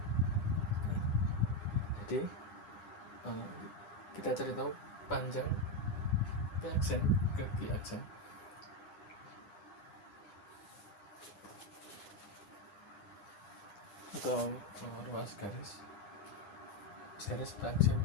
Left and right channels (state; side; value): late; right; 9.9 ms